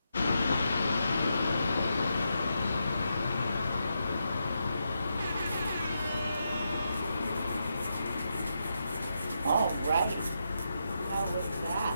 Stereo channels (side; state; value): both; inverted; correlation -0.84